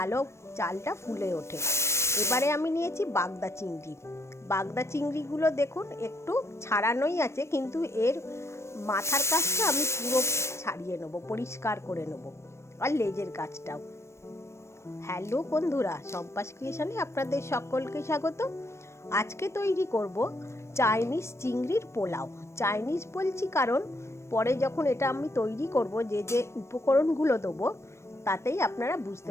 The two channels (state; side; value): late; right; 0.13 ms